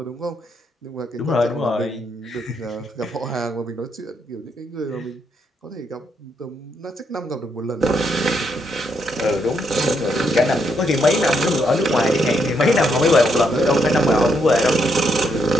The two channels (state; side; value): normal; both; correlation 0.76